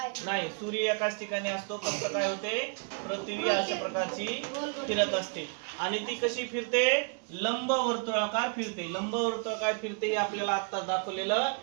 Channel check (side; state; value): left; quieter; 39.1 dB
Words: नाही. सूर्य एकाच ठिकाणी असतो. फक्त काय होते, पृथ्वी अशा प्रकारची फिरत असते. आणि ती कशी फिरते? लंबवर्तुळाकार फिरते. लंबवर्तुळाकार फिरते हे आपल्याला आता दाखवलेलं